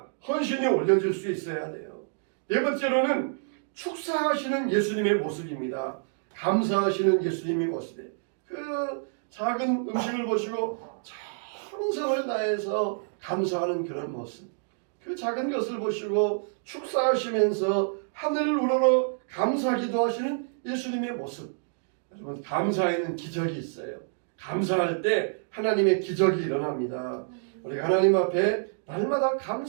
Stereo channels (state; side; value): silent; left; digital silence